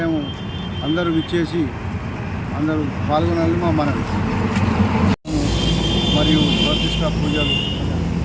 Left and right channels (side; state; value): both; identical; correlation 1.00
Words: అందరూ విచ్చేసి అందరూ పాల్గొనాలని మా మనవి. మరియు ప్రతిష్ట పూజలు,